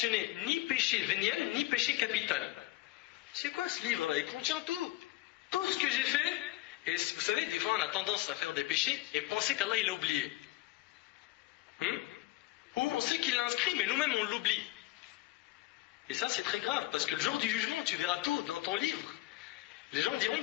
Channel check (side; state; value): right; quieter; 18.5 dB